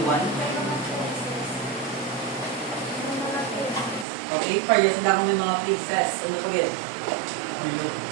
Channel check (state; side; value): drops out; left; at 4.0 s